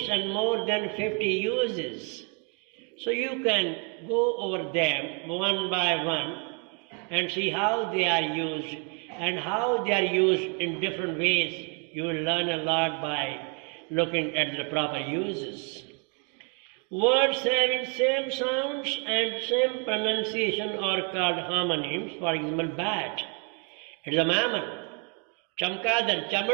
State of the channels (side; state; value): left; quieter; 37.3 dB